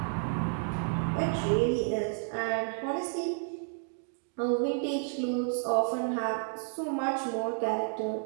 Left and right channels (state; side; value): silent; left; 57 dB below the other